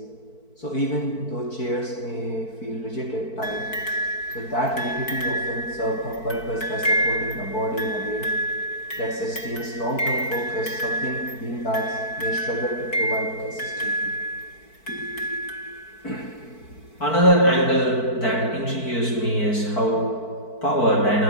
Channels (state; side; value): late; right; 4.5 ms